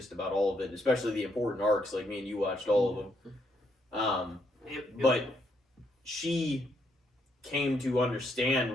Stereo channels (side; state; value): both; normal; correlation 0.75